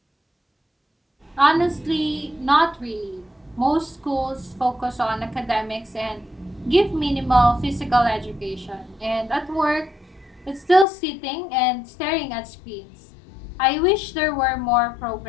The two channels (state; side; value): drops out; right; at 10.9 s